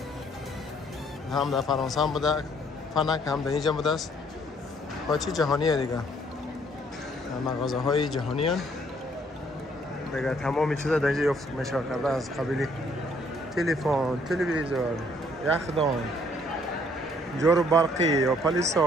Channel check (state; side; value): normal; both; correlation 0.64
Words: هم در فرانسه هم بوده. فنک هم در اینجا بوده است. با چی جهانیه دیگه. مغازه های جهانی هستند. دیگه تمام چیزا در اینجا یافت میشه کرده از قبیل تلفن، تلویزیون، یخدان، جارو برقی یا